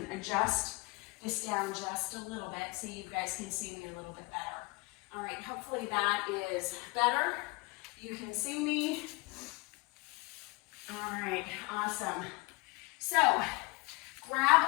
adjust this down just a little bit so you guys can see me a little bit better. All right, hopefully that is better. You can see me. All right, awesome. So grab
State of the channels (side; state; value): right; quieter; 26.4 dB